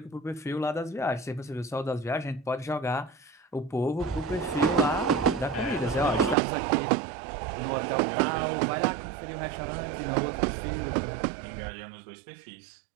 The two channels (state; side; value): drops out; left; at 6.4 s